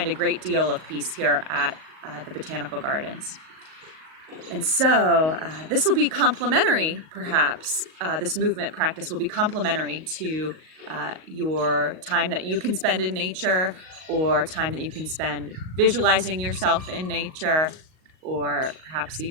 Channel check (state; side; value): late; left; 38 ms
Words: a great deal of peace here at the Botanical Gardens. And so this will be complementary, perhaps. This movement practice will be complementary to your time that you can spend in nature, or time that you can spend visualizing yourself in nature, or perhaps